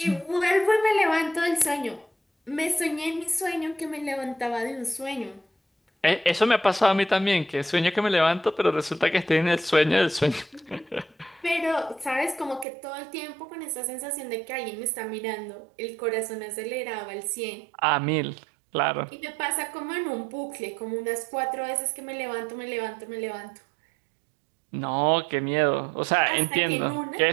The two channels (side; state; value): left; drops out; at 12.7 s